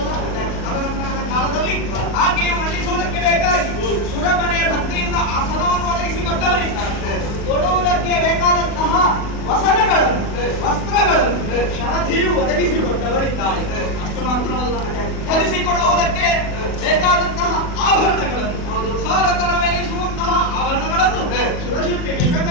ತದನಂತರದ ಕಾಲದಲ್ಲಿ ಆಕೆಯು ಮಂಡಿಸುವುದಕ್ಕೆ ಬೇಕಾಗಿ ಸುರಮನೆಯ ಭಕ್ತಿಯಿಂದ ಆಸನವನ್ನು ಒದಗಿಸಿಕೊಟ್ಟವರಿದ್ದಾರೆ. ತೊಡುವುದಕ್ಕೆ ಬೇಕಾದಂತಹ ವಸನಗಳನ್ನು, ವಸ್ತ್ರಗಳನ್ನು ಶರಧಿಯು ಒದಗಿಸಿಕೊಟ್ಟವರಿದ್ದಾರೆ. ಅಷ್ಟು ಮಾತ್ರವಲ್ಲ, ಧರಿಸಿಕೊಳ್ಳುವುದಕ್ಕೆ ಬೇಕಾದಂತಹ ಆಭರಣಗಳನ್ನು, ಸಾಲಕರವೆನಿಸುವಂತಹ ಆಭರಣಗಳನ್ನು ಸುರಶಿಲ್ಪಿ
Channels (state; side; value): late; right; 40 ms